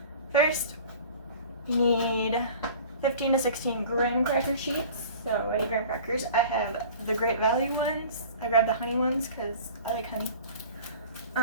first you need 15 to 16 graham cracker sheets. So any graham crackers. I have the Great Value ones. I grabbed the honey ones because I like honey.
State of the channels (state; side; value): inverted; both; correlation -0.43